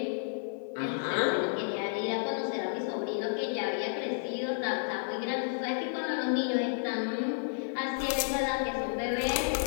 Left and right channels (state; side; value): silent; right; 57 dB below the other